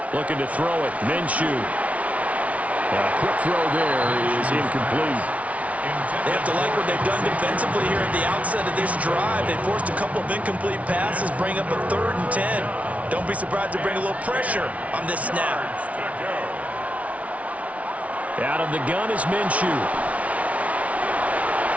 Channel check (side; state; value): left; late; 0.066 ms